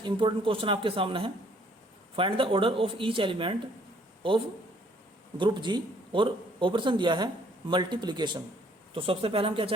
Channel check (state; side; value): normal; both; correlation 0.62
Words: इंपॉर्टेंट क्वेश्चन आपके सामने है, find the order of each element of group G, और ऑपरेशन दिया है मल्टीप्लिकेशन। तो सबसे पहले हम क्या